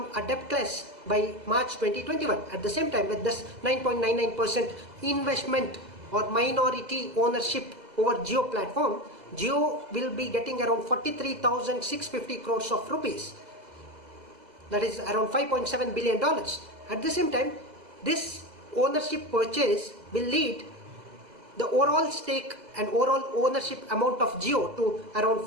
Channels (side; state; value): left; late; 2.0 ms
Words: a debtless by March 2021. At the same time, with this 9.99% investment or minority ownership over Jio platform, Jio will be getting around 43,650 crores of rupees. That is around $5.7 billion. At the same time, this ownership purchase will lead the overall stake and overall ownership amount of Jio to around